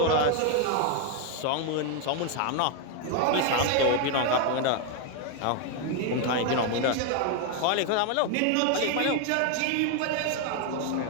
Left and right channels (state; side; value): different; both; correlation 0.01